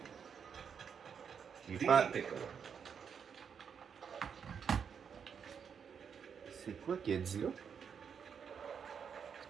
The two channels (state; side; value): quieter; left; 7.0 dB